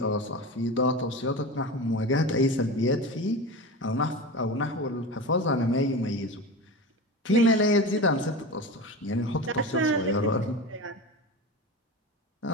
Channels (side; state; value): both; normal; correlation 0.27